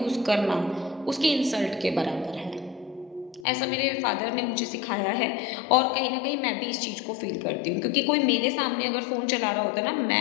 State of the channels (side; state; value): right; drops out; at 3.5 s